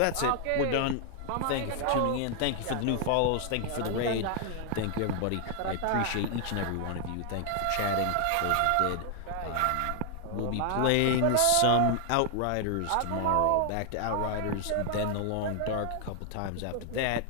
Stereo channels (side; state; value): both; different; correlation 0.00